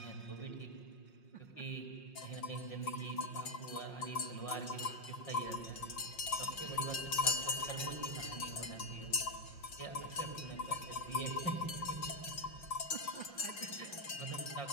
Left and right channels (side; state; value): right; late; 5.6 ms